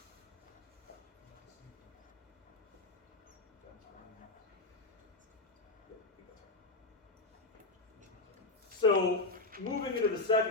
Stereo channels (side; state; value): right; quieter; 3.2 dB